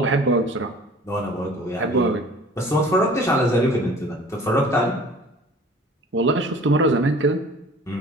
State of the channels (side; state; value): both; normal; correlation 0.46